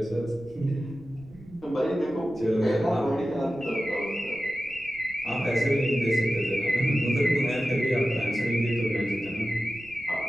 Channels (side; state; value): right; noise; rumble, 22 dB below the sound